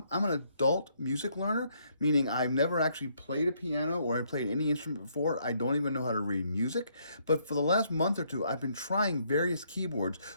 I'm an adult music learner, meaning I've never actually played a piano or I played any instrument before. I don't even know how to read music. But for the last month or two, I've been trying various keyboards,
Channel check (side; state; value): both; inverted; correlation -0.70